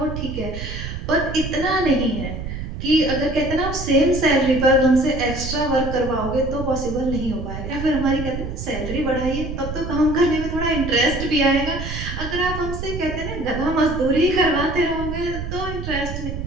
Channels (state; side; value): noise; right; rumble, 7 dB below the sound